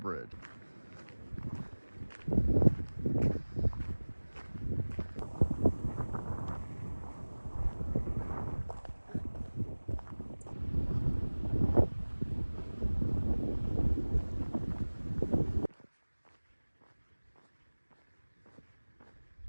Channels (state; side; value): inverted; both; correlation -1.00